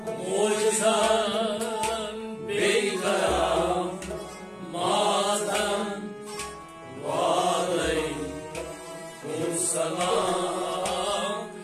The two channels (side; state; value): both; identical; correlation 1.00